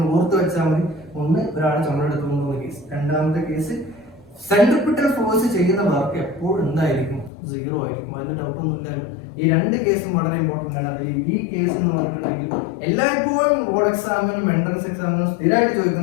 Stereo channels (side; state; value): right; drops out; at 7.3 s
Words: ഓർത്ത് വെച്ചാൽ മതി. ഒന്ന്, ഒരാൾ ചുമടെടുത്ത് കൊണ്ടുപോകുന്ന കേസ്. രണ്ടാമത്തെ കേസ്, സെൻട്രിപിറ്റൽ ഫോഴ്സ് ചെയ്യുന്ന വർക്ക് എപ്പോഴും എന്തായിരിക്കും? സീറോ ആയിരിക്കും. അതിന് ഡൗട്ടൊന്നുമില്ലല്ലോ. ഈ രണ്ട് കേസും വളരെ ഇമ്പോർട്ടന്റ് ആണ്. അതിൽ ഈ കേസ് എന്ന് പറഞ്ഞിട്ടുണ്ടെങ്കിൽ എല്ലായ്പ്പോഴും ബോർഡ് എക്സാമിനും എൻട്രൻസ് എക്സാമിനും സ്ഥിരമായിട്ട്